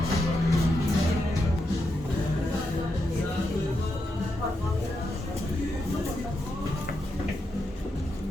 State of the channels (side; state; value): both; normal; correlation 0.84